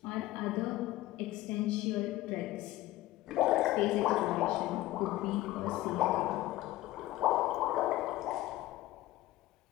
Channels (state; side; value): quieter; right; 16.6 dB